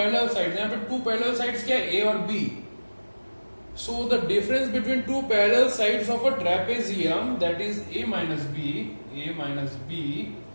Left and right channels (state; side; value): inverted; both; correlation -1.00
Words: sides, यहां पे two parallel sides क्या है? A और B. So the difference between two parallel sides of a trapezium, that is A minus B